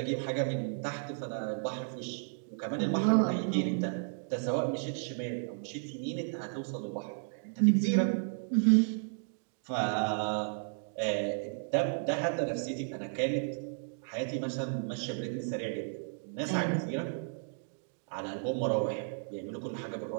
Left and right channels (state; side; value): silent; left; digital silence